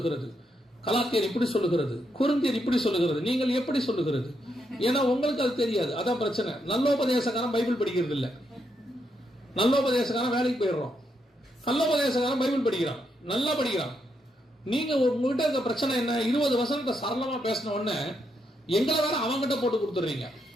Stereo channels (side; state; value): both; normal; correlation 0.79